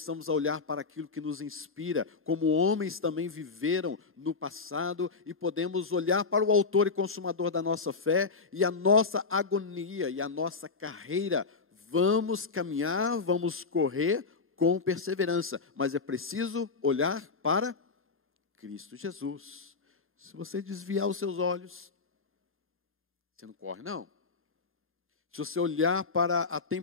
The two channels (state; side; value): quieter; right; 4.5 dB